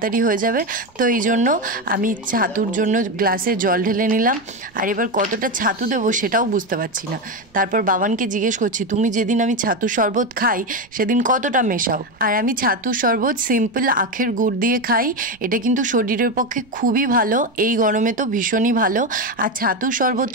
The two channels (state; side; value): noise; right; rumble, 29 dB below the sound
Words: হয়ে যাবে। তো এই জন্য আমি ছাতুর জন্য গ্লাসে জল ঢেলে নিলাম। আর এবার কতটা ছাতু দেবো সেটাও বুঝতে পারছি না। তারপর বাবানকে জিজ্ঞেস করছি, তুমি যেদিন আমি ছাতুর শরবত খাই সেদিন কতটা মেশাও? আর আমি ছাতুর শরবত সিম্পল আখের গুড় দিয়ে খাই। এটা কিন্তু শরীরের পক্ষে খুবই ভালো, এই গরমে তো ভীষণই ভালো। আর ছাতুর